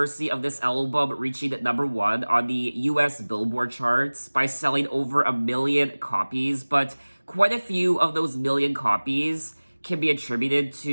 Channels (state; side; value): inverted; both; correlation -1.00